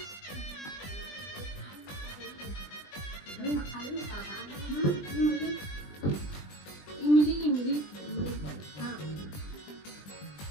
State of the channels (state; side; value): late; right; 20 ms